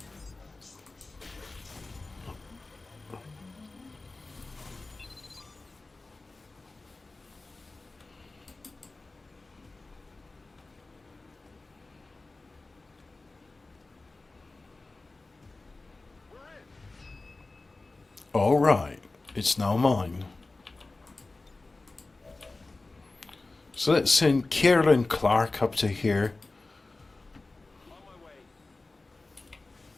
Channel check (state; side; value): quieter; right; 3.3 dB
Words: all right, it's now mine. So let's send Kierland Clark up to here.